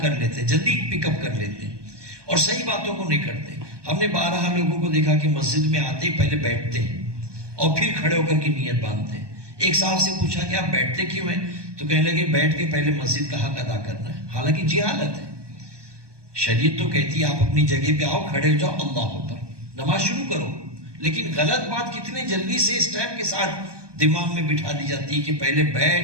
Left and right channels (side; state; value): left; late; 1.2 ms